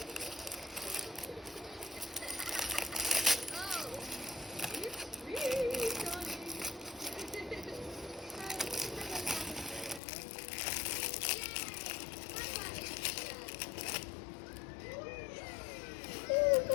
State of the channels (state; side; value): drops out; right; at 10.0 s